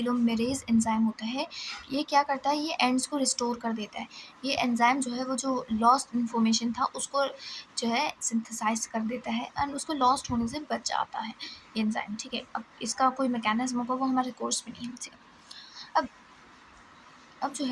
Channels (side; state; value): both; identical; correlation 1.00